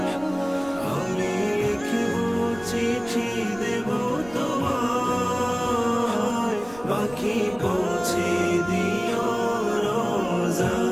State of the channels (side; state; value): right; noise; rumble, 20 dB below the sound